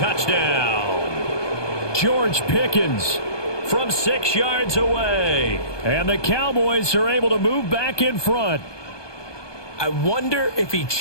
George Pickens from 6 yards away. And the Cowboys are able to move back in front. I wonder if he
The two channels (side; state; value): right; late; 1.2 ms